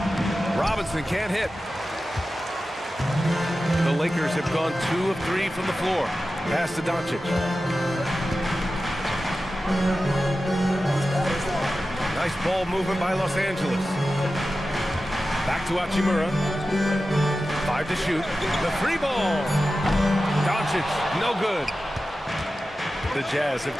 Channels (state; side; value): normal; both; correlation 0.93